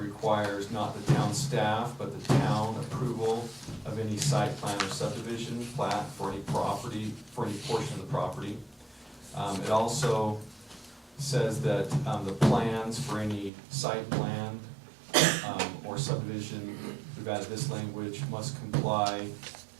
not the town staff, but the town approval of any site plan or subdivision plat for any property, for any portion of the property. It also says that the plans for any site plan or subdivision, we've added this language, must comply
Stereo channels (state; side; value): drops out; left; at 13.5 s